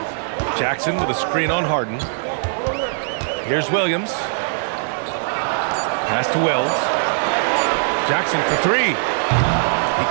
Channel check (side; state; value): left; silent; 59 dB below the other